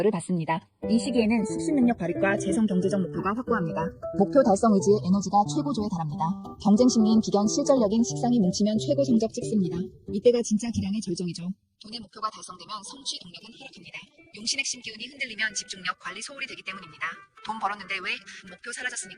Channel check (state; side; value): identical; both; correlation 1.00